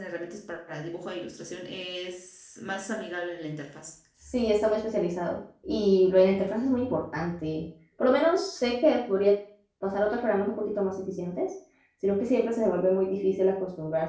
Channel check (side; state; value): both; identical; correlation 1.00